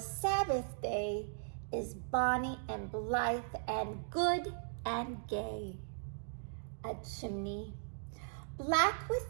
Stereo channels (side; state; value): left; silent; digital silence